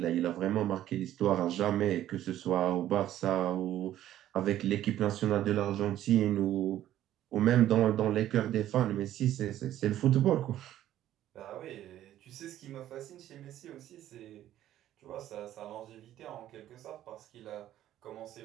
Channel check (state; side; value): quieter; left; 12.6 dB